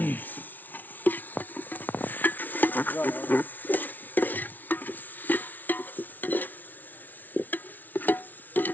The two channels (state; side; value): late; right; 0.083 ms